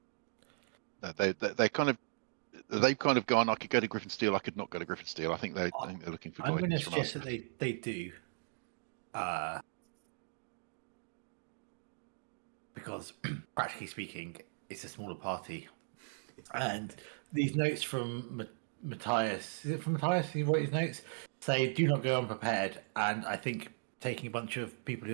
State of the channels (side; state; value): left; silent; digital silence